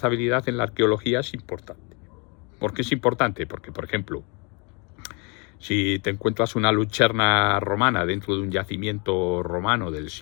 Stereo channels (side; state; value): right; quieter; 32.6 dB